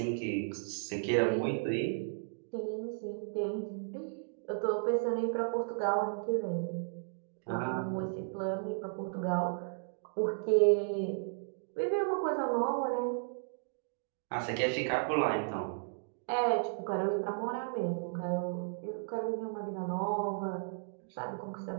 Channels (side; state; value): left; silent; digital silence